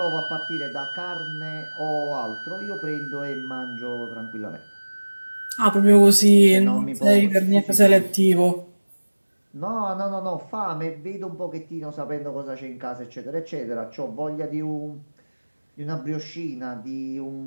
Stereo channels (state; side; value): inverted; both; correlation -1.00